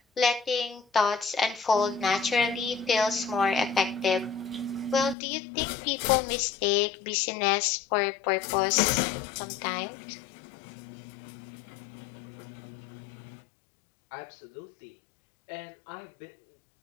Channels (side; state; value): right; drops out; at 5.2 s